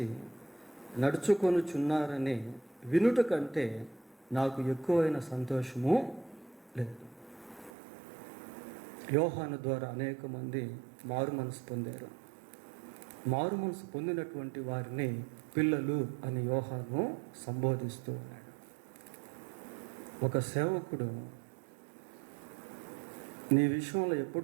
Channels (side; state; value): left; drops out; at 7.7 s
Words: నడుచుకొనుచున్నారని వినుట కంటే నాకు ఎక్కువైన సంతోషము లేదు. యోహాను ద్వారా అనేక మంది మారు మనసు పొందారు. మారు మనసు పొందినటువంటి వారిని పిల్లలు అని యోహాను సంబోధిస్తూ ఉన్నాడు. ఒక సేవకుడు నీ విషయంలో